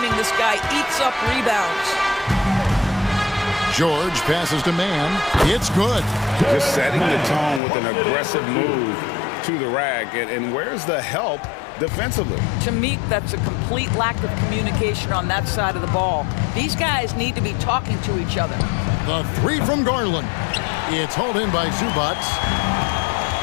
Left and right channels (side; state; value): right; drops out; at 7.6 s